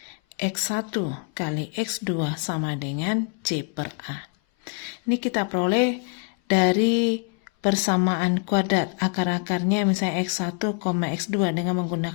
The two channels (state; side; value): quieter; right; 38.6 dB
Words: X1 kali X2 sama dengan C per A. Ini kita peroleh dari persamaan kuadrat akar-akarnya misalnya X1, X2 dengan